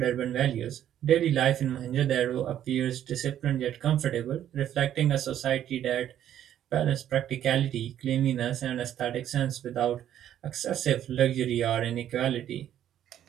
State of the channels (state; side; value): quieter; left; 10.9 dB